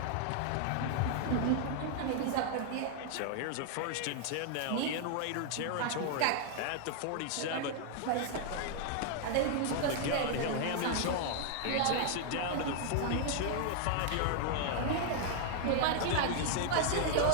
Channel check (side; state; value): both; different; correlation 0.00